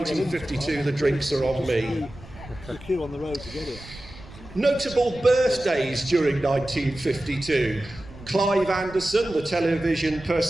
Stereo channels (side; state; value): right; noise; rumble, 18 dB below the sound